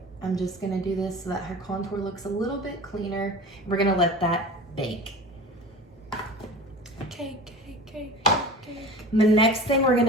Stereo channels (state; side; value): normal; both; correlation 0.36